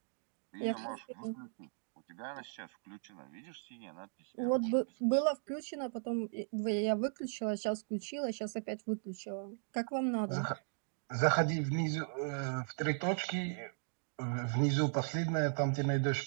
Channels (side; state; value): left; silent; digital silence